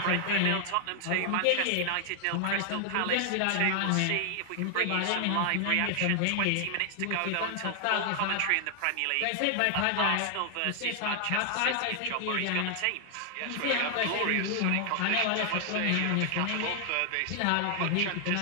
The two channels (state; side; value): different; both; correlation 0.00